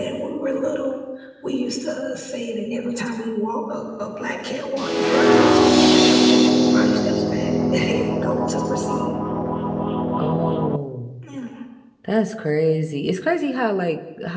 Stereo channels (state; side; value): identical; both; correlation 1.00